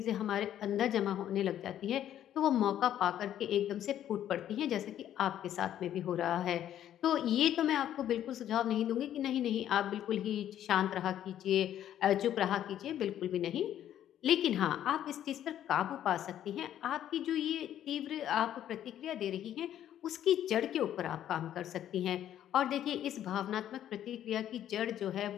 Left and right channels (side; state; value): right; quieter; 11.1 dB